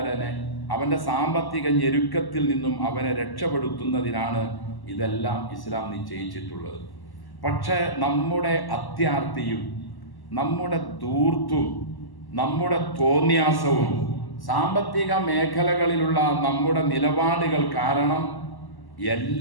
അവൻ്റെ സാമ്പത്തിക ഞെരുക്കത്തിൽ നിന്നും അവനെ രക്ഷപ്പെടുത്തുന്നതിനാണ് ഇതെല്ലാം ഇസ്ലാം നിശ്ചയിച്ചിട്ടുള്ളത്. പക്ഷേ നമ്മുടെ അത്യാർത്തിയും നമ്മുടെ ധൂർത്തും നമ്മുടെ തോന്നിയാസവും സാമ്പത്തിക മേഖലകളിലുള്ള നമ്മുടെ നിലപാടുകൾ കാരണം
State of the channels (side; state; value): right; late; 1.1 ms